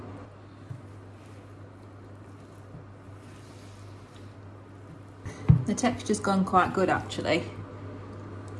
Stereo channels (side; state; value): both; identical; correlation 1.00